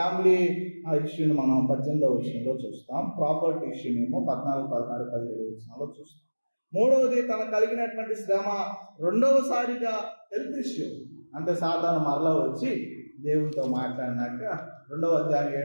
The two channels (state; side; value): inverted; both; correlation -1.00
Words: ఇష్యూని మనం 18వ వచనంలో చూస్తాం. ప్రాపర్టీ ఇష్యూనేమో 14, 16, 17 వచనంలో చూస్తాం. మూడవది తన కలిగినటువంటి శ్రమ. రెండవసారిగా హెల్త్ ఇష్యూ, అంటే సాధారణ మరలా వచ్చి దేవుడితో మాట్లాడినాక 2వ అధ్యాయం